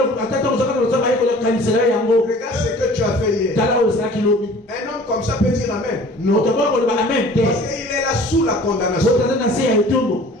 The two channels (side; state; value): both; normal; correlation 0.47